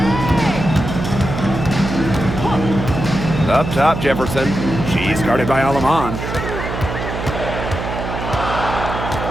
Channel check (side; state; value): right; noise; hum, 5 dB below the sound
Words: Up top, Jefferson. She's guarded by Aleman.